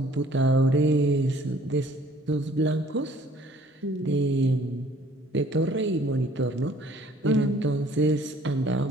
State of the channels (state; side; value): normal; both; correlation 0.57